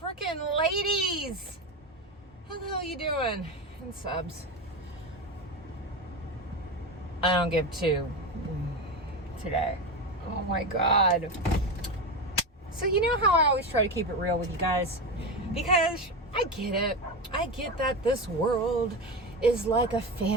ladies. How the hell you doing? And subs. I don't give two today. Oh my God. So you know how I always try to keep it real with you guys? Because I get it. I get that this world is like a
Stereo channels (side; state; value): both; normal; correlation 0.19